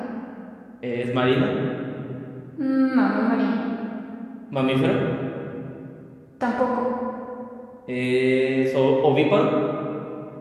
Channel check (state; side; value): identical; both; correlation 1.00